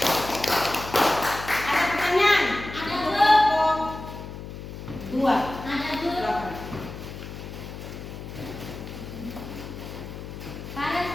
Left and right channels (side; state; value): left; noise; hum, 10 dB below the sound